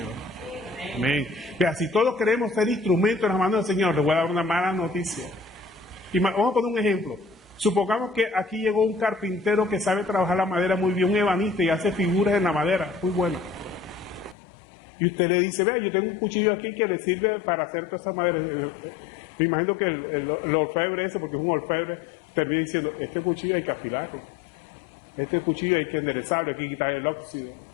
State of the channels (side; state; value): right; drops out; at 14.4 s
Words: Amén. Mira, si todos queremos ser instrumentos en las manos del Señor, les voy a dar una mala noticia. Y vamos a poner un ejemplo. Supongamos que aquí llegó un carpintero que sabe trabajar la madera muy bien, un ebanista, y hace figuras en la madera, muy buenas. Y usted le dice, vea, yo tengo un cuchillo aquí que le sirve para hacer toda esa madera. Me imagino que el orfebre ese, porque es un orfebre, termina diciendo, este cuchillo hay que afilarlo, este cuchillo hay que enderezarlo, hay que quitar el óxido.